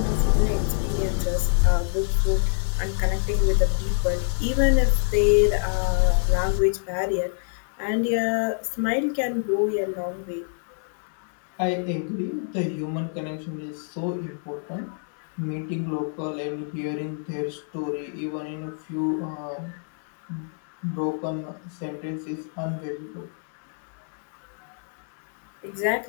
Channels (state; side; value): silent; right; 61 dB below the other